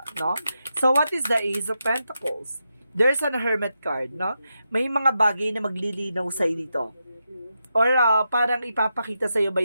no? So, what is the Ace of Pentacles? There's an Hermit card, no? May mga bagay na maglilinaw sa'yo dito. Or parang ipapakita sa'yo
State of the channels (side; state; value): both; inverted; correlation -0.86